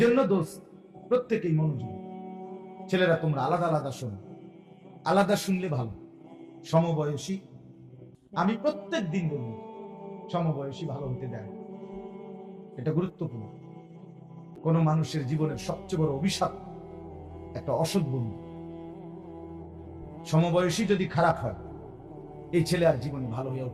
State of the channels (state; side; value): identical; both; correlation 1.00